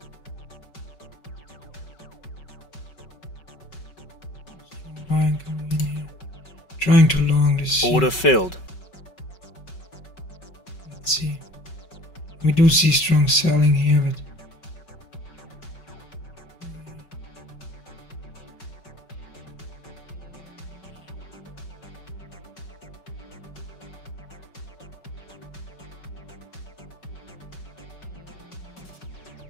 Buying coming in here. Trying to long this. Order filled. Let's see. We do see strong selling here, but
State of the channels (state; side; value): late; right; 5.3 ms